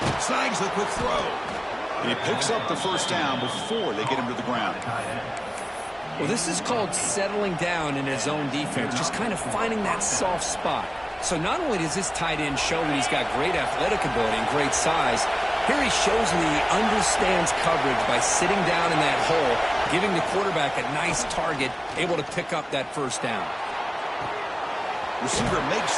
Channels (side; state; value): both; identical; correlation 1.00